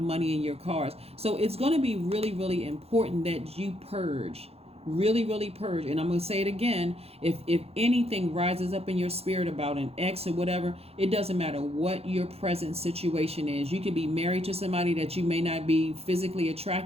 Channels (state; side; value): late; left; 0.29 ms